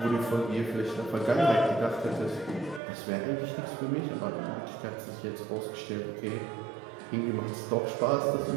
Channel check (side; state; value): left; drops out; at 2.8 s